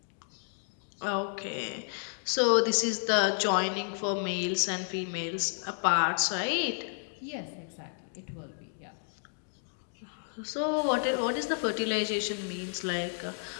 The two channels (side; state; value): right; silent; digital silence